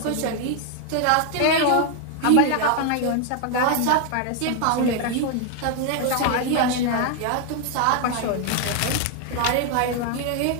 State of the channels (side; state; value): both; different; correlation 0.00